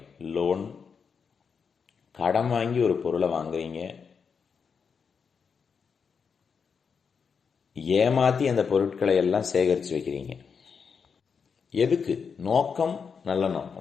லோன், கடன் வாங்கி ஒரு பொருளை வாங்குறீங்க, ஏமாத்தி அந்த பொருட்களை எல்லாம் சேகரித்து வைக்கிறீங்க. எதுக்கு? நோக்கம் நல்ல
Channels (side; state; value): right; quieter; 6.1 dB